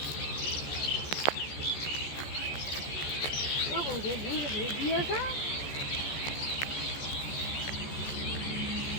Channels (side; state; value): right; late; 14 ms